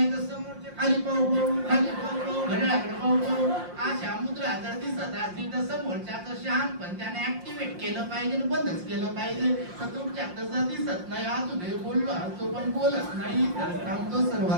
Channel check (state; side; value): late; left; 5.6 ms